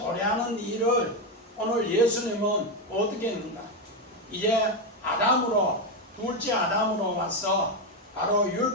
일을 오늘 예수님은 어떻게 했는가? 이제 아담으로 둘째 아담으로 와서 바로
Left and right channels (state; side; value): normal; both; correlation 0.09